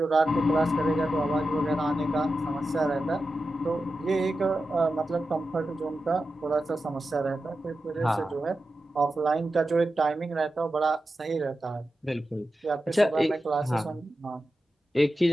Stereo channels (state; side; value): normal; both; correlation 0.91